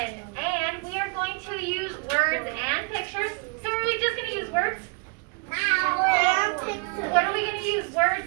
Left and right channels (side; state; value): left; quieter; 33.8 dB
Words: And we are going to use words and pictures. So are we just going to use words? What are we going to use?